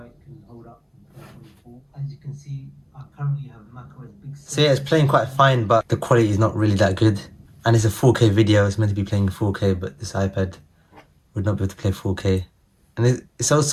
it can hold up in 2024. As you can see, I currently have macOS Big Sur. So yeah, it's playing quite fine, but the quality is not really that good. And it's a 4K video, it's meant to be playing 4K, but this iPad would not be able to play 4K. And it's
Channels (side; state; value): both; identical; correlation 1.00